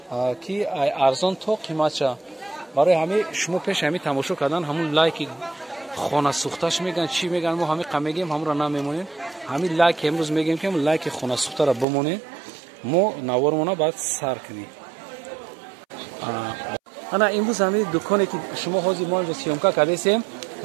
ки арзон то қиматша. барои ҳами шумо пеши ҳами тамошо кардан ҳамун лайки хонасӯхташ мегӯянд чӣ мегӯянд, мо ҳами мегӯем ҳамуро намемонем. ҳами лайки имрӯз мегӯем ки лайки хонасӯхтаро бимонем, мо навормона баъд сар кунем. ана имрӯз ҳами дуконе ки шумо ҳозир мо инҷо сиёмка кардесем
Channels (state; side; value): drops out; left; at 11.9 s